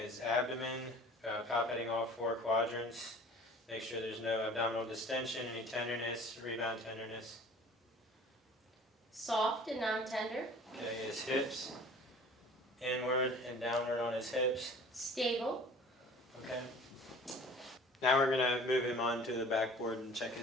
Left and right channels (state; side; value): normal; both; correlation 0.46